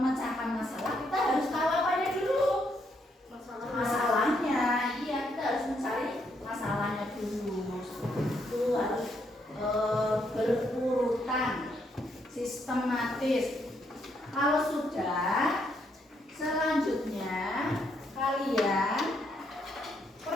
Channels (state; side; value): normal; both; correlation 0.75